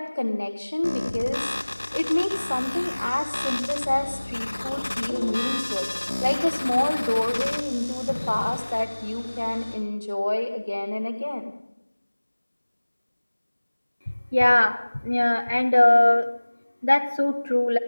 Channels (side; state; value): both; inverted; correlation -1.00